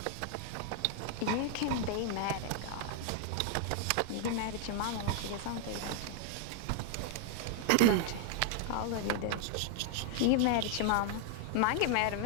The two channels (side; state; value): both; different; correlation 0.00